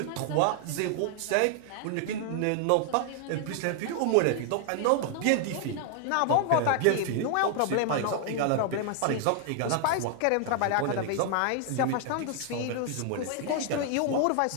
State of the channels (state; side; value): different; both; correlation 0.00